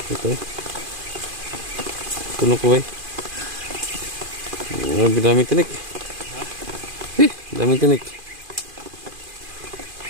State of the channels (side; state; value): left; late; 2.4 ms